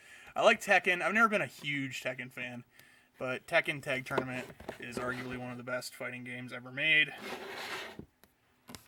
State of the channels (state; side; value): identical; both; correlation 1.00